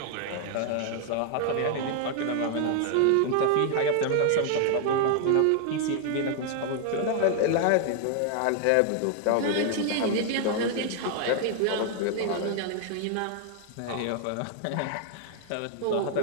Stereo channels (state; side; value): different; both; correlation 0.00